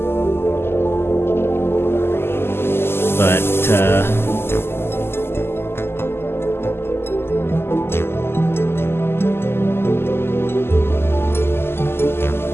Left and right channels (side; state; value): right; late; 0.12 ms